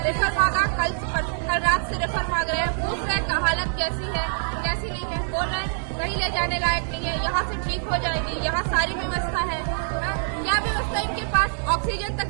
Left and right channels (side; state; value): left; silent; digital silence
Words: रेफर मांगा, कल रात से रेफर मांग रहे हैं। पूछ रहे हैं हालत कैसी है, कैसी नहीं है। बोल रहे हैं कहीं ले जाने लायक नहीं है, यहाँ से ठीक हो जाएगी, यहाँ सारी व्यवस्था है। क्या व्यवस्था इनके पास? ऑक्सीजन तक